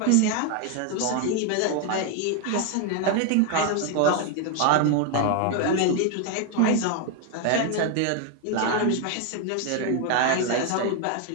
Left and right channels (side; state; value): both; different; correlation 0.01